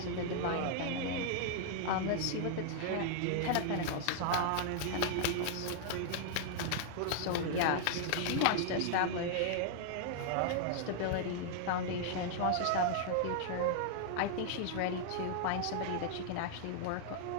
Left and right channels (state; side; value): different; both; correlation 0.00